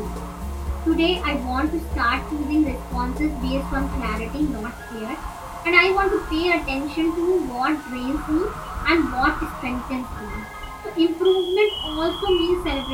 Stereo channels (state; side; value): identical; both; correlation 1.00